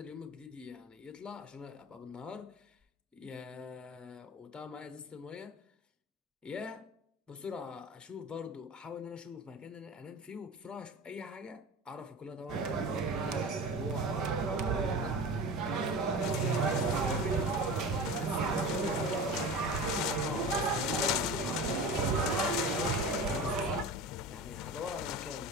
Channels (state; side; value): normal; both; correlation 0.32